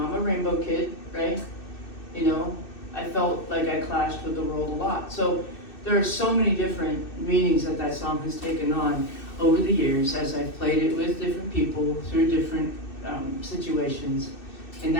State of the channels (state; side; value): late; right; 2.6 ms